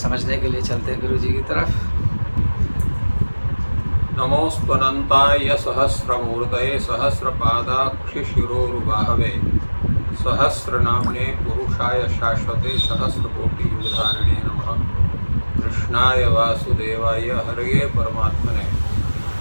के लिए चलते हैं गुरु जी की तरफ। नमोऽस्त्वनन्ताय सहस्रमूर्तये सहस्रपादाक्षिशिरोरुबाहवे सहस्रनाम्ने पुरुषाय शाश्वते सहस्रकोटियुगधारिणे नमः। कृष्णाय वासुदेवाय हरये परमात्मने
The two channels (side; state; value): both; inverted; correlation -1.00